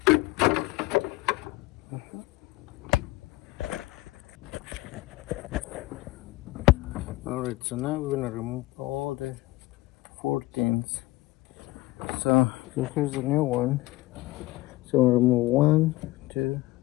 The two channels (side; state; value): right; quieter; 19.2 dB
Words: Alright, so now we're gonna remove all the 14s. So here's the new one. So we'll remove 1, 2,